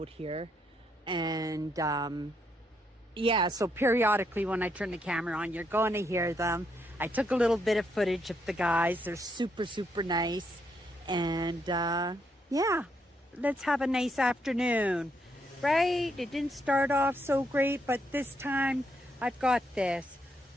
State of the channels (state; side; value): normal; both; correlation 0.76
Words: here. And yeah, so periodically when I turn the camera on, you're going to hear them. I took a little bit of footage of the guys. They're super, super nice. And yeah, let's have a nice afternoon. Right? It didn't start off so great, but this time I've got this.